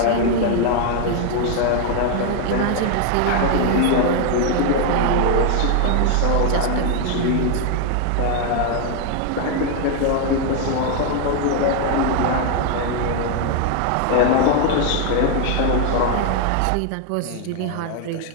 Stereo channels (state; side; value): different; both; correlation 0.01